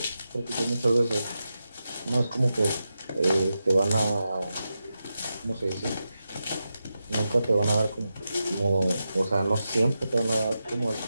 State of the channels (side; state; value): both; inverted; correlation -0.90